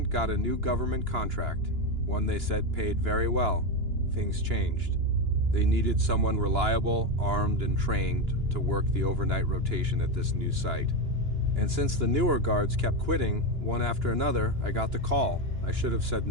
got a new government contract, one they said paid very well, things changed. They needed someone reliable, armed, and trained to work the overnight rotation at this new site. And since the newer guards kept quitting, one after another, I got the call. I should have said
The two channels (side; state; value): left; late; 2.9 ms